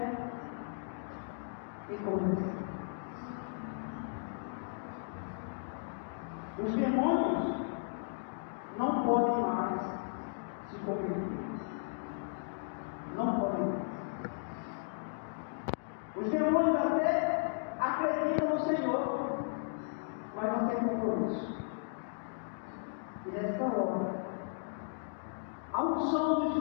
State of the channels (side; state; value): right; silent; digital silence